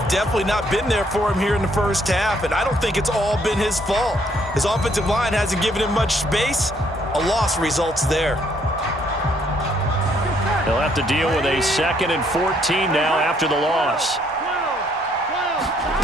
definitely not been there for him here in the 1st half, and I don't think it's all been his fault. His offensive line hasn't given him much space. A loss results there. They'll have to deal with a 2nd and 14 now after the loss.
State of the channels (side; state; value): both; normal; correlation 0.68